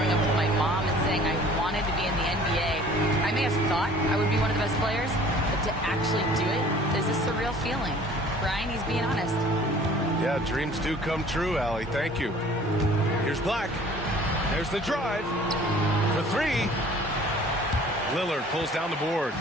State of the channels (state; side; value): normal; both; correlation 0.50